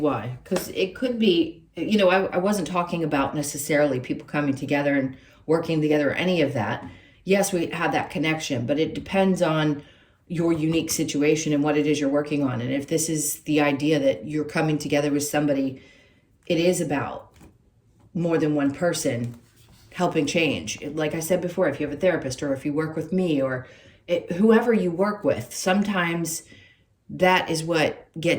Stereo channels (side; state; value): both; identical; correlation 1.00